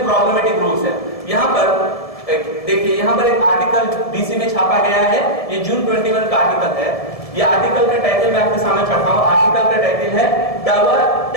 پرابلمٹک رولس ہیں۔ یہاں پر دیکھیے یہاں پر ایک آرٹیکل DC میں چھاپا گیا ہے، یہ جون 21 کا آرٹیکل ہے۔ یہ آرٹیکل کا ٹائٹل میں آپ کے سامنے پڑھتا ہوں۔ آرٹیکل کا ٹائٹل ہے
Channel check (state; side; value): late; right; 1.7 ms